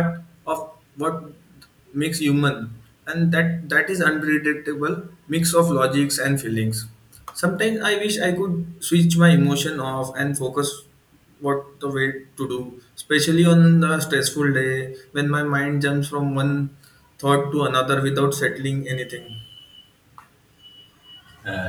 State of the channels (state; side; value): identical; both; correlation 1.00